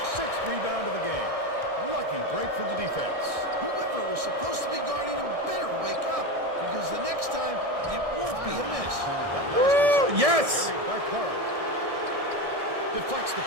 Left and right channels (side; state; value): left; late; 1.6 ms